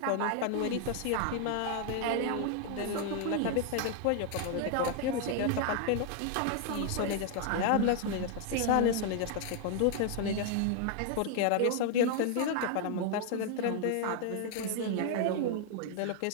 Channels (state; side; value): different; both; correlation 0.00